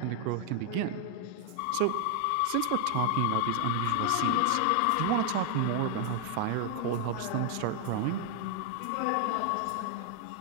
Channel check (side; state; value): both; different; correlation 0.00